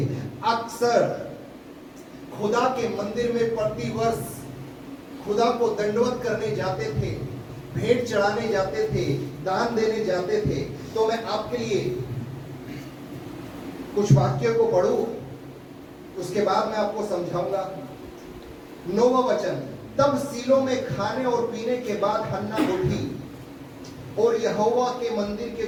अक्सर खुदा के मंदिर में प्रतिवर्ष खुदा को दंडवत करने जाते थे, भेंट चढ़ाने जाते थे, दान देने जाते थे। तो मैं आपके लिए कुछ वाक्यों को पढ़ूं, उसके बाद मैं आपको समझाऊंगा। 9वां वचन, तब सीलो में खाने और पीने के बाद हन्ना उठी और यहोवा के मंदिर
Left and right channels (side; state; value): both; identical; correlation 1.00